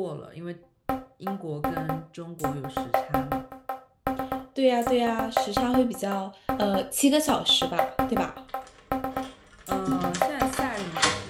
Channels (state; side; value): identical; both; correlation 1.00